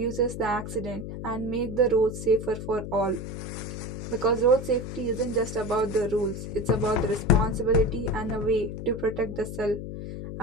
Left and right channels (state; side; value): noise; left; hum, 8 dB below the sound